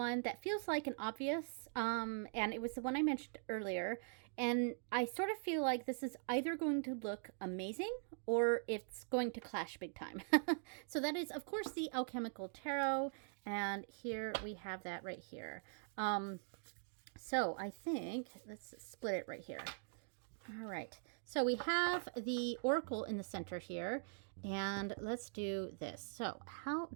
that feels like an obvious, and it was the one I mentioned earlier, and I sort of feel like this is either going to look amazing or it's going to clash big time. So that is, of course, the Alchemical Tarot, and here we have that right here. So I think, let's split it right here. All right, so we have the Oracle in the center here, and let's do this. So how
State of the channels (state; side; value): silent; left; digital silence